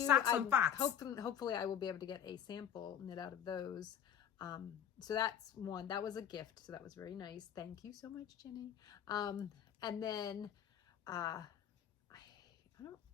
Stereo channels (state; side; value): quieter; right; 9.2 dB